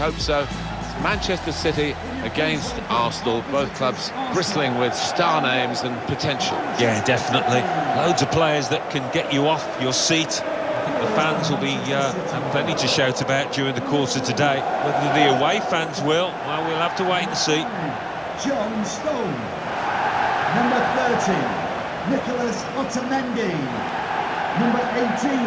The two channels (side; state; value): both; identical; correlation 1.00